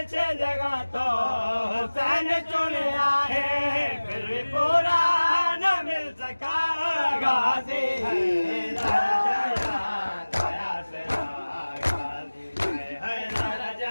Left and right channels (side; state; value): both; inverted; correlation -1.00